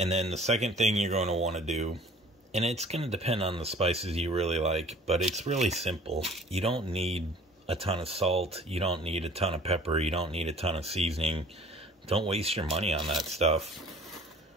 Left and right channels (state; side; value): normal; both; correlation 0.50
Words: then the second thing you're going to want to do, and it's going to depend on the spices you really like, but it's really simple. You don't need a ton of salt, you don't need a ton of pepper, you don't need a ton of seasoning. Don't waste your money on that stuff.